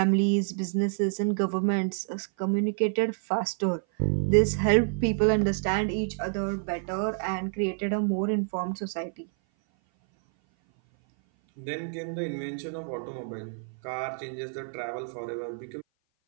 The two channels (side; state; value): left; silent; 56 dB below the other